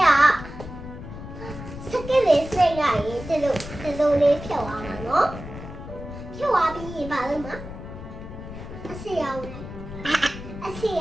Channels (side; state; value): left; noise; rumble, 11 dB below the sound